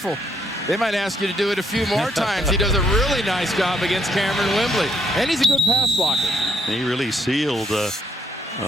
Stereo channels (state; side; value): normal; both; correlation 0.72